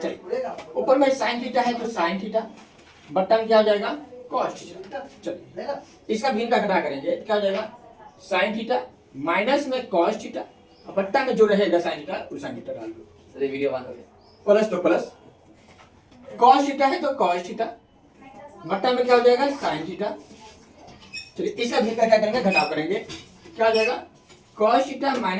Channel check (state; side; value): identical; both; correlation 1.00